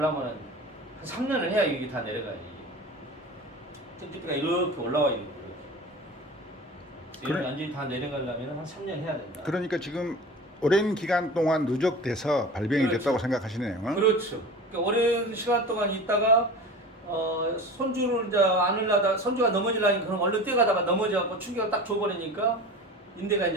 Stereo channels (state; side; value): normal; both; correlation 0.35